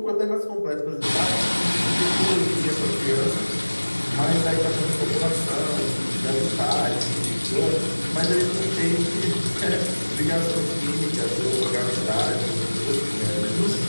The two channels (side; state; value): both; inverted; correlation -1.00